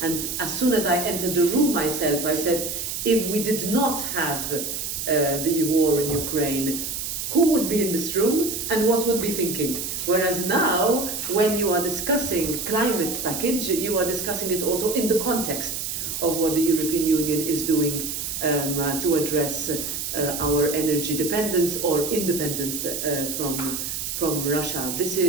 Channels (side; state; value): right; noise; hiss, 4 dB below the sound